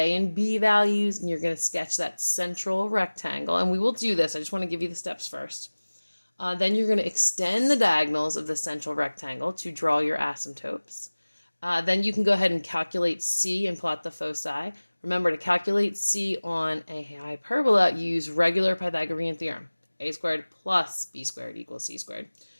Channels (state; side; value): inverted; both; correlation -1.00